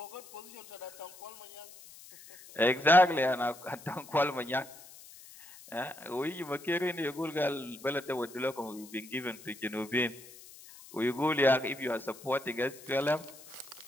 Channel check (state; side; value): noise; left; hiss, 19 dB below the sound